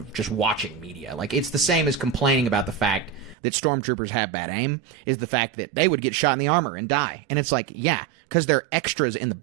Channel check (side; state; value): left; drops out; at 3.4 s